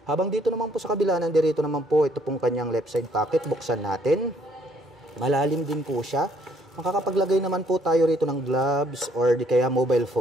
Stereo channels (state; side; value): normal; both; correlation 0.65